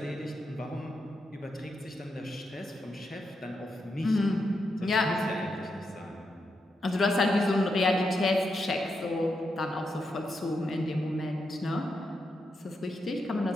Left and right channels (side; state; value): both; normal; correlation 0.84